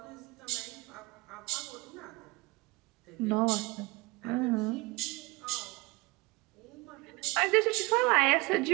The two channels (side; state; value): left; quieter; 24.7 dB